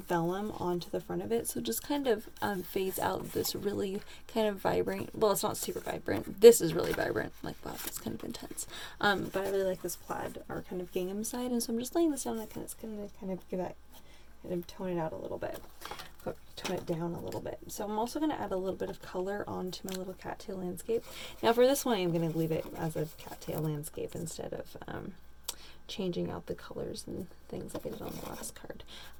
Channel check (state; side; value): identical; both; correlation 1.00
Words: onto the front of it, so just kind of fades out this really kind of vibrant, well, it's not super vibrant, this is really vibrant, like wow, it's kind of intense, but I really like this plaid or kind of gingham side, and so I'm just laying this down, it's going to kind of give that, kind of tone it out a little bit, tone it down a little bit. So I'm also going to add a little bit of color onto my little cattail landscape. Now for this one, I'm going to leave it as a cattail landscape instead of changing out the colors and things like I did on the last card.